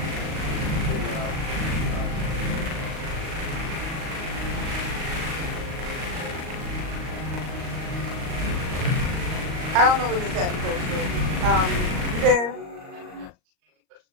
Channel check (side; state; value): left; late; 38 ms